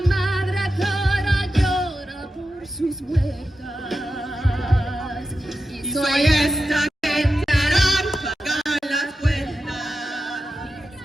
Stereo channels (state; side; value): normal; both; correlation 0.91